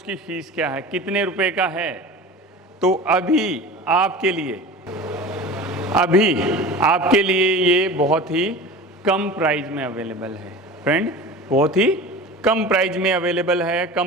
की फ़ीस क्या है, कितने रुपए का है? तो अभी आपके लिए ये बहुत ही कम प्राइस में अवेलेबल है फ्रेंड, बहुत ही कम प्राइस में अवेलेबल है।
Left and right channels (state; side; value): normal; both; correlation 0.35